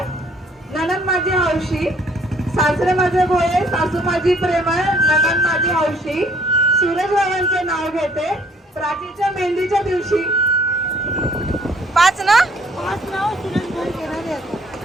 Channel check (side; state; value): both; normal; correlation 0.60